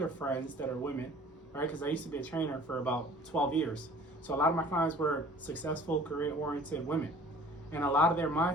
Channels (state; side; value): normal; both; correlation 0.48